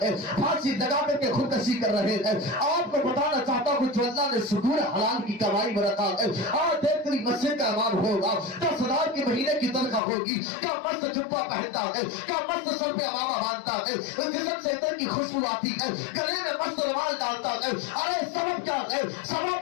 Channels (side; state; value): right; drops out; at 10.0 s